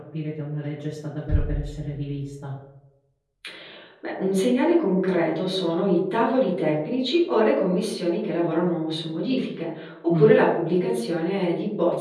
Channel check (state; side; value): identical; both; correlation 1.00